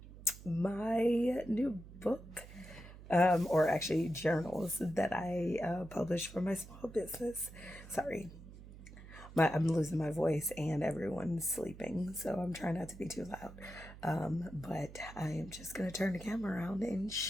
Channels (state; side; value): noise; right; hum, 16 dB below the sound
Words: new book, or actually journals that I published for my small business. Sorry, I'm losing my voice and everyone's sleeping, so I'm trying not to be too loud. But I am just going to turn the camera around and